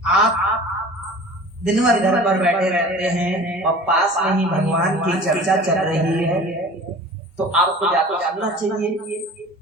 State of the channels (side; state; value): both; normal; correlation 0.42